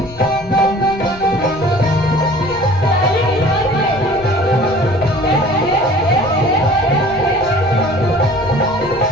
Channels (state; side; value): noise; left; rumble, 18 dB below the sound